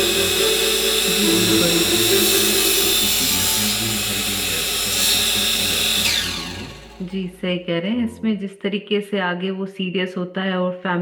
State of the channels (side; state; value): both; identical; correlation 1.00